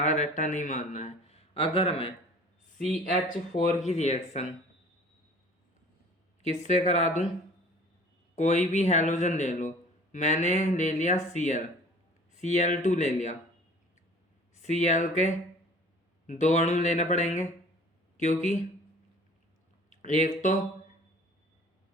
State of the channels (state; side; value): normal; both; correlation 0.48